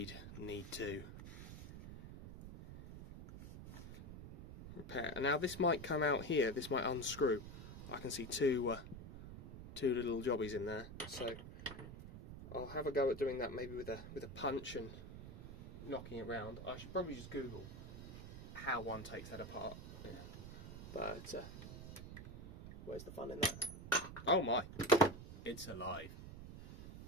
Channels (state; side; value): noise; right; rumble, 11 dB below the sound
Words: need to repair. And now this might come out here, this might unscrew. I can see two little jobbies in there, so I'll have a go at doing that maybe with a punch and knocking it round. I should probably just Google how one takes that apart. Yeah. But where's the fun in that? Oh my, it's alive.